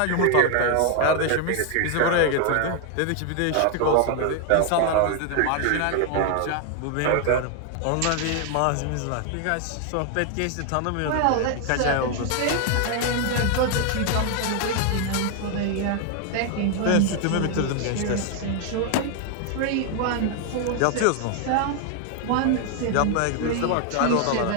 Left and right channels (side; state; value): both; different; correlation 0.00